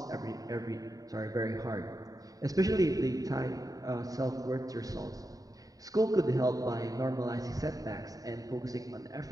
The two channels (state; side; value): late; left; 0.18 ms